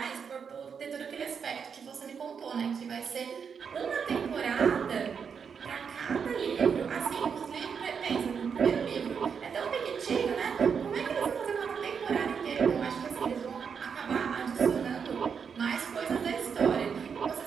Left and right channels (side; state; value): left; quieter; 6.5 dB